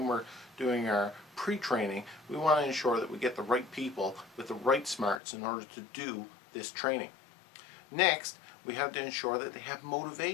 we're doing our pre-training, we want to ensure that we get the right people with the right smarts in order to do this training. Next, we have to ensure that they have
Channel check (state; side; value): drops out; right; at 5.2 s